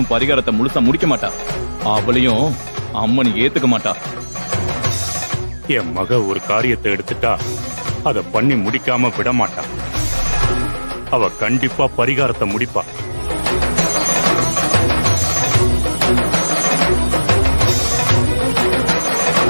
பரிகாரத்தை முழுசா முடிக்க மாட்டா. அவளையும் அம்மன் ஏத்துக்க மாட்டா. என் மக ஒரு காரியத்தை எடுத்துட்டா அத பண்ணி முடிக்காம விட மாட்டா. அவ கண்டிப்பா பரிகாரத்தை முடிப்பா.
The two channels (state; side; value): inverted; both; correlation -1.00